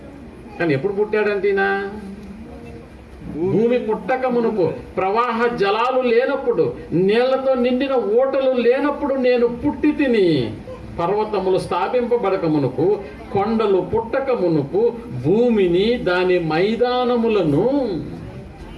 కానీ ఎప్పుడు పుట్టాడంటేనా? భూమి పుట్టక మునుపు, ప్రవాహ జలాలు లేనప్పుడు, నీళ్లతో నిండిన ఓటలు లేనప్పుడు నేను పుట్టి తిని. పర్వతములు స్థాపింపబడక మునుపు, కొండలు పుట్టక మునుపు, భూమిని దాని మైదానములను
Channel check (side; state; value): both; identical; correlation 1.00